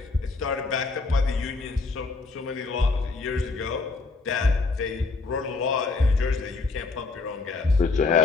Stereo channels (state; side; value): quieter; right; 3.9 dB